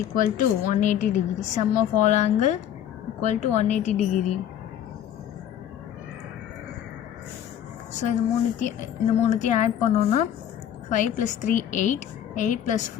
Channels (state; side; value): quieter; right; 10.2 dB